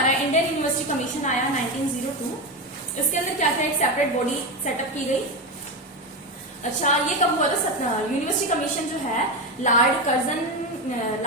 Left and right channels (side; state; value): both; normal; correlation 0.15